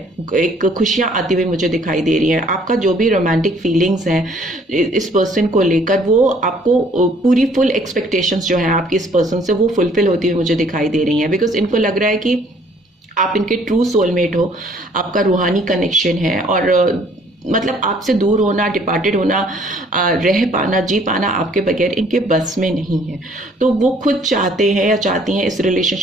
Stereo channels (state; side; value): normal; both; correlation 0.60